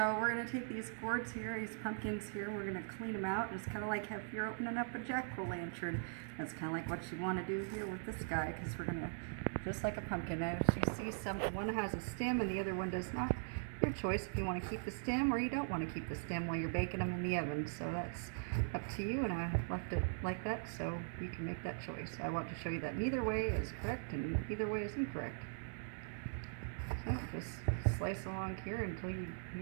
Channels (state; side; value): silent; left; digital silence